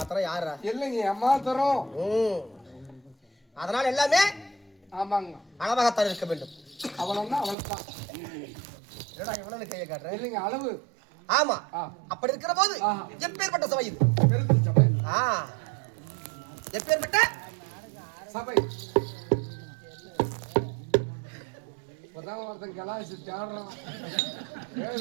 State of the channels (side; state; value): left; drops out; at 7.6 s